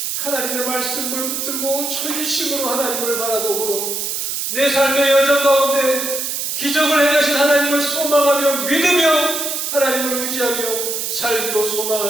하나님의 말씀을 붙들고 전심으로 하나님을 바라보므로 내 삶의 여정 가운데 기적을 행하신 하나님을 소망하며 믿으며 하나님을 의지하며 살기로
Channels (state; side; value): noise; right; hiss, 2 dB below the sound